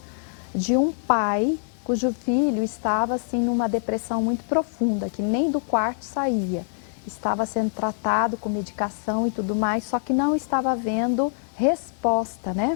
de um pai cujo filho estava assim numa depressão muito profunda, que nem do quarto saía. Estava sendo tratado com medicação e tudo mais, só que não estava havendo resposta,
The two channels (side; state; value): right; silent; 62 dB below the other